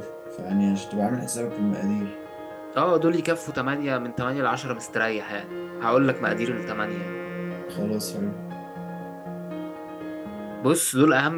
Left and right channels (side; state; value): both; identical; correlation 1.00